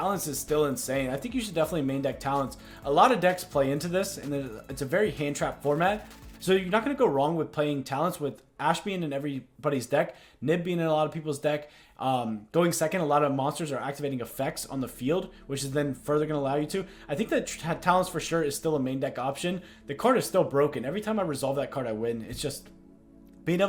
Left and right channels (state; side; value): identical; both; correlation 1.00